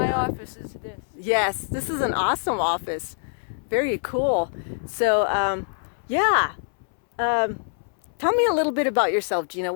down. office is this. Yes, this is an awesome office. Very cool. So, tell me a little bit about yourself, Gina.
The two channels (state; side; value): silent; right; 62 dB below the other